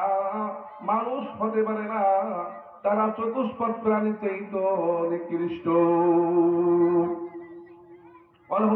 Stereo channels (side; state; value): both; identical; correlation 1.00